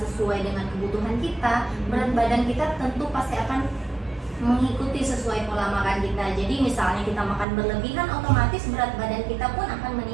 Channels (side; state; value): left; drops out; at 7.5 s